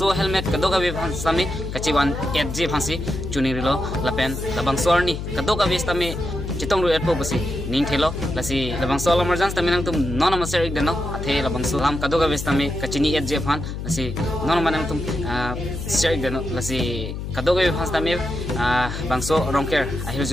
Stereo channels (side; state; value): left; noise; hum, 6 dB below the sound